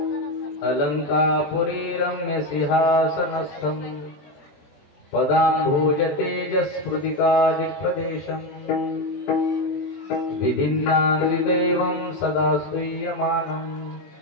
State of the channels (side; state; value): right; late; 20 ms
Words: अलङ्कापुरी रम्यसिंहासनस्थं पदाम्भोज तेजस्फुटिकादिप्रदेशम् विधिन्नादिदेवं सदा स्तूयमानं